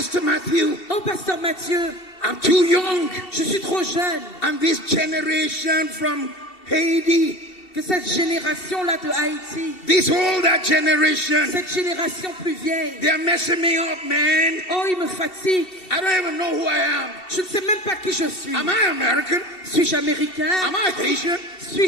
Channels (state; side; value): late; right; 2.7 ms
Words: Matthew, Oh, Pasteur Mathieu, I'm too young. je suis trop jeune. And this generation from Haiti, Que cette génération-là de Haïti, this older generation, cette génération plus vieille, they're messing me up, man. oh, il me fatigue. I don't even know who I am. Je ne sais même pas qui je suis. Am I American? Suis-je américain? Am I Haitian?